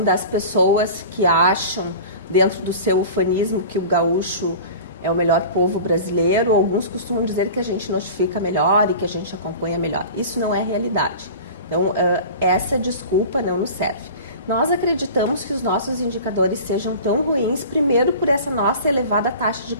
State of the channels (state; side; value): inverted; both; correlation -0.37